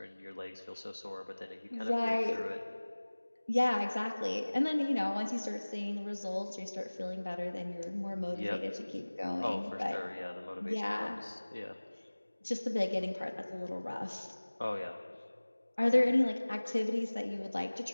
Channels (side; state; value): both; inverted; correlation -1.00